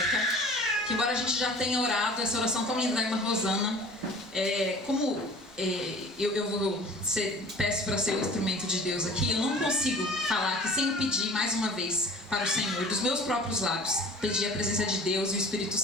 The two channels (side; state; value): both; normal; correlation 0.44